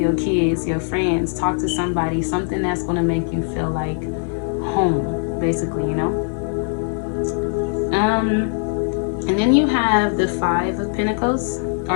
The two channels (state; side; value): silent; right; 62 dB below the other